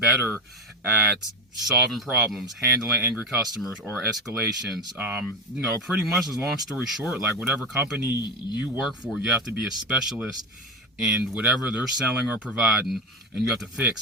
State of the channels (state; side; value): normal; both; correlation 0.17